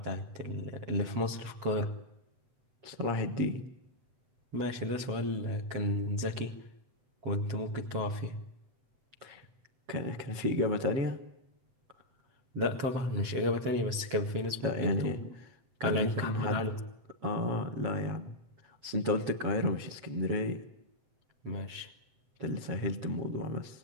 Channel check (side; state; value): left; late; 7.5 ms